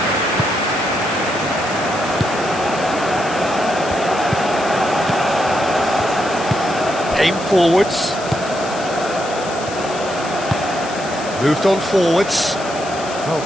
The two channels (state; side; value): noise; left; hiss, 14 dB below the sound